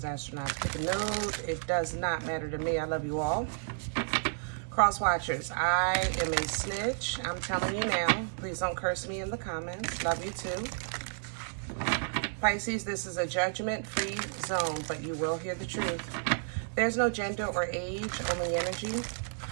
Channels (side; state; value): left; silent; digital silence